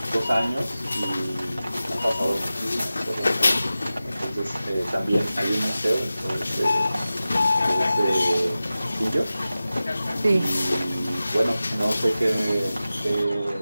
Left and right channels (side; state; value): both; inverted; correlation -0.95